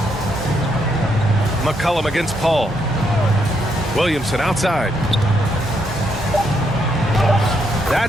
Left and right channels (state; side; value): normal; both; correlation 0.77